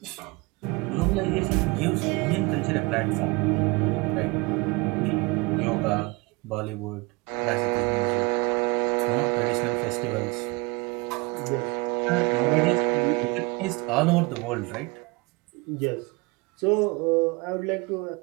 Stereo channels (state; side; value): quieter; left; 26.4 dB